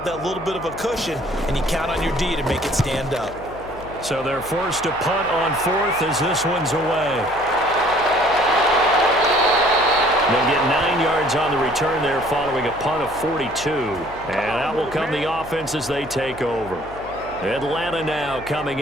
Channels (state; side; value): noise; left; hum, 18 dB below the sound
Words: that little bit of a cushion, and you count on your D to make it stand up. So they're forced to punt on 4th as this one's away. They'll get 9 yards on the return there following a punt of 42. And out will come the offense as they take over. Atlanta now coming